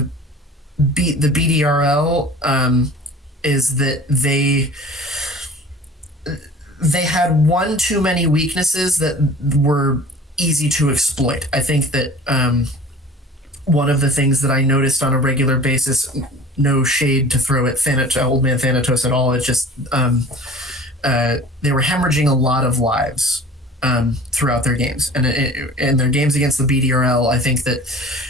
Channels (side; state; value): both; normal; correlation 0.43